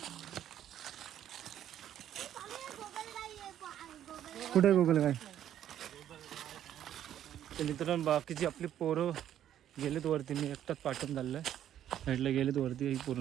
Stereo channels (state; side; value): quieter; left; 10.9 dB